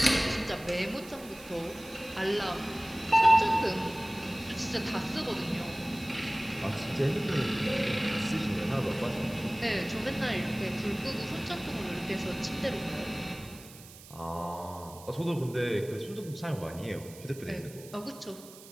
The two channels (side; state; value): right; noise; hiss, 19 dB below the sound